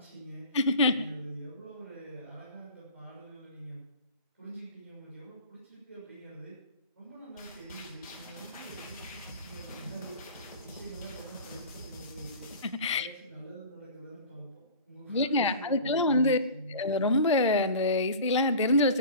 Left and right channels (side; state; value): both; inverted; correlation -0.37